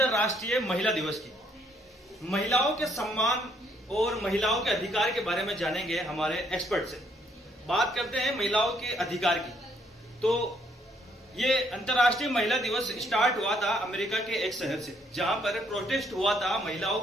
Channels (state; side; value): normal; both; correlation 0.69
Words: महिला दिवस की। महिलाओं के सम्मान और महिलाओं के अधिकार के बारे में जानेंगे हमारे एक्सपर्ट से। बात करते हैं महिलाओं के अधिकार की। तो ये अंतर्राष्ट्रीय महिला दिवस स्टार्ट हुआ था अमेरिका के एक शहर से, जहां पर प्रोटेस्ट हुआ था महिलाओं